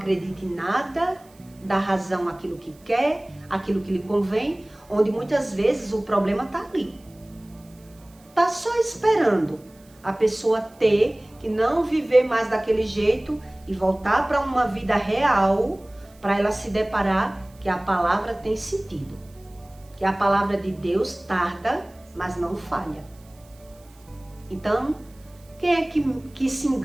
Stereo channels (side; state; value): right; noise; hiss, 29 dB below the sound